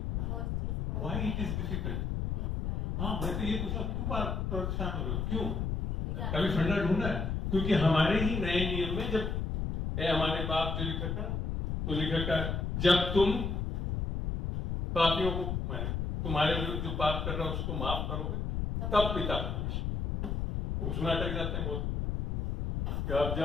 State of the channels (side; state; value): left; noise; rumble, 1 dB below the sound